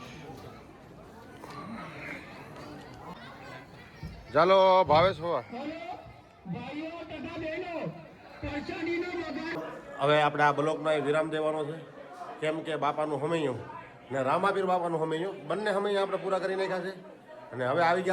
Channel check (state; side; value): identical; both; correlation 1.00